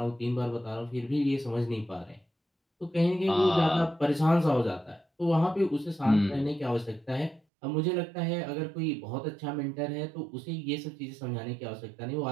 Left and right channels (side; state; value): left; drops out; at 7.4 s